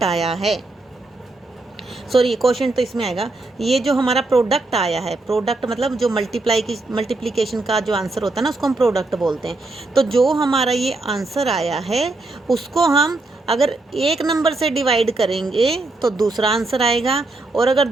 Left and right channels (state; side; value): quieter; left; 3.1 dB